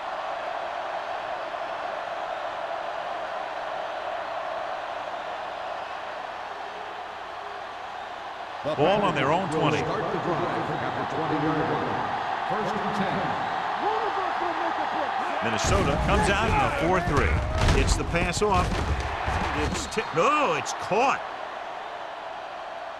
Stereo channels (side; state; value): both; identical; correlation 1.00